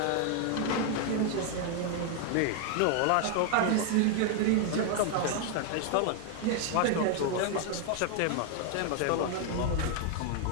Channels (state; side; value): different; both; correlation 0.00